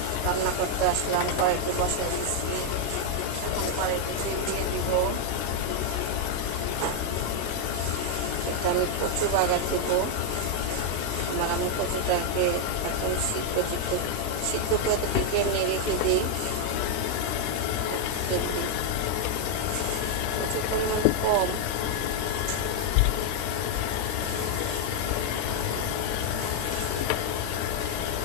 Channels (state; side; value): different; both; correlation 0.00